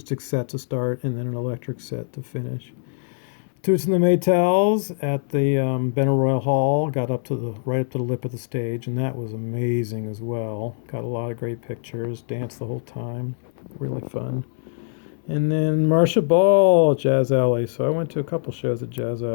set to start, and then an electric set to finish. Toots and the Maytals at the Benaroya Hall. Got right up to the lip of the stage, and that was amazing as well. Got a lot of great pictures. Danced the whole time. Really fun. And then Marcia Ball at Jazz Alley. So I went to a couple shows at Jazz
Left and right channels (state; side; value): silent; right; digital silence